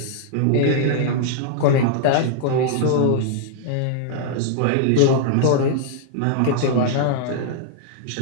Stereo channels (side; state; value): both; different; correlation -0.01